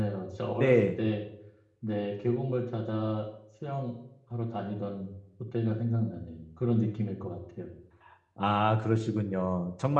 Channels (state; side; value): identical; both; correlation 1.00